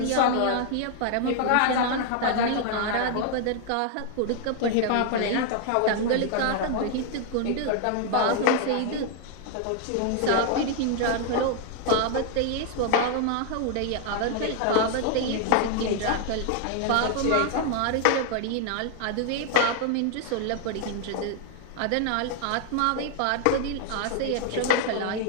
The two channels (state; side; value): different; both; correlation 0.00